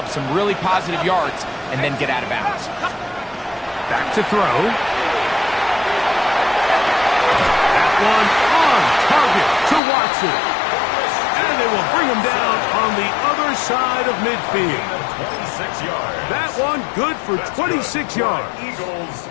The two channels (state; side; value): drops out; right; at 9.8 s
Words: some really positive yards and then get out of bounds. Back to throw. That one on target to Watson. And they will bring him down on the other side of midfield. That one good for 26 yards.